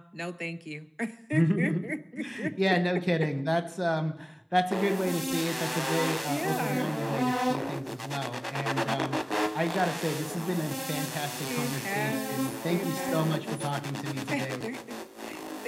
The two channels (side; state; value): both; identical; correlation 1.00